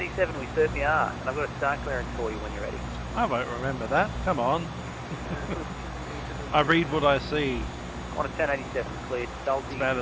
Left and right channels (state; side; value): identical; both; correlation 1.00